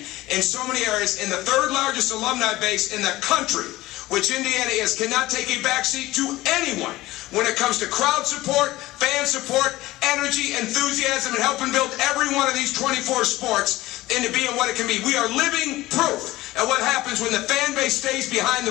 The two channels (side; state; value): right; quieter; 17.8 dB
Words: in so many areas. In the third largest alumni base in the country, which Indiana is, cannot take a backseat to anyone when it comes to crowd support, fan support, energy, enthusiasm, and helping build every one of these 24 sports into being what it can be. We are living proof of what happens when the fan base stays behind